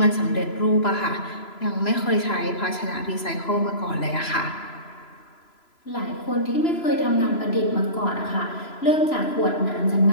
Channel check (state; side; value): late; right; 3.0 ms